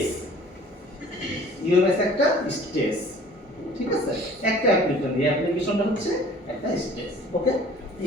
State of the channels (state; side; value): normal; both; correlation 0.50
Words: ইউএমএস একটা স্টেজ, ঠিক আছে? একটা অ্যাপ্লিকেশন, এই অ্যাপ্লিকেশনটা হচ্ছে একটা স্টেজ। ওকে,